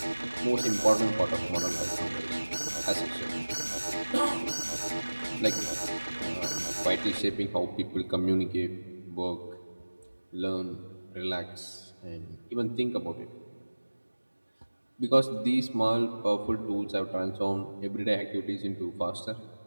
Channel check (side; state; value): both; inverted; correlation -1.00